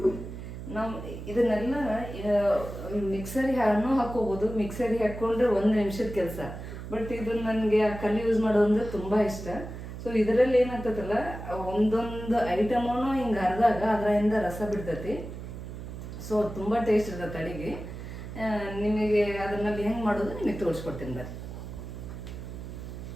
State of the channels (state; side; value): noise; right; hum, 9 dB below the sound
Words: ನಾವು ಇದನ್ನೆಲ್ಲ ಮಿಕ್ಸರಿಗೆ ಹಾಕೋಬೋದು. ಮಿಕ್ಸರಿಗೆ ಹಾಕ್ಕೊಂಡ್ರೆ 1 ನಿಮಿಷದ ಕೆಲಸ. ಬಟ್ ಇದು ನನಗೆ ಆ ಕಲ್ಲು ಯೂಸ್ ಮಾಡೋದಂದ್ರೆ ತುಂಬ ಇಷ್ಟ. ಸೊ ಇದರಲ್ಲಿ ಏನಾಗ್ತದಲ್ಲ, ಒಂದೊಂದು ಐಟಮೂ ಹಿಂಗೆ ಹರಿದಾಗ ಅದರಿಂದ ರಸ ಬಿಡ್ತೈತಿ. ಸೊ ತುಂಬ ಟೇಸ್ಟ್ ಇರ್ತೈತೆ ಅಡುಗೆ. ನಿಮಗೆ ಅದನ್ನಲ್ಲಿ ಹೆಂಗೆ ಮಾಡೋದು ನಿಮಗೆ ತೋರಿಸ್ಕೊಡ್ತೀನಿ ಬರ್ರಿ.